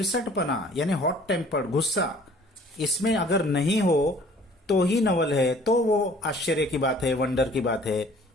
यानी हॉट टेम्पर्ड, गुस्सा, इसमें अगर नहीं हो तो ही नवल है, तो वो आश्चर्य की बात है, वंडर की बात है।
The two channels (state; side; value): normal; both; correlation 0.53